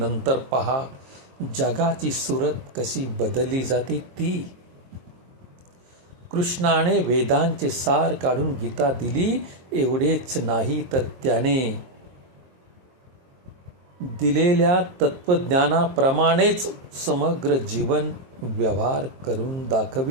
पहा जगाची सूरत कशी बदलली जाते ती. कृष्णाने वेदांचे सार काढून गीता दिली. एवढेच नाही तर त्याने दिलेल्या तत्वज्ञानाप्रमाणेच समग्र जीवन व्यवहार करून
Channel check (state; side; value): late; left; 22 ms